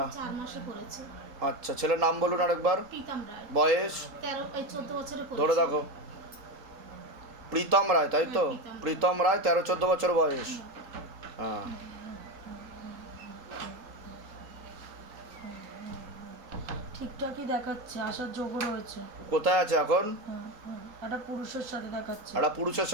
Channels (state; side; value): late; left; 3.8 ms